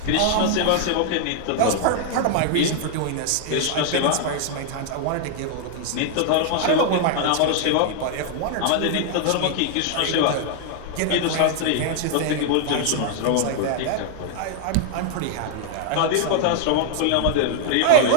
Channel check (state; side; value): different; both; correlation 0.00